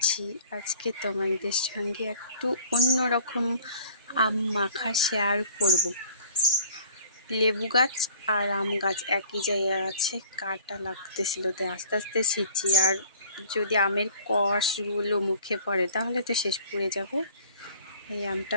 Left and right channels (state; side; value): inverted; both; correlation -0.49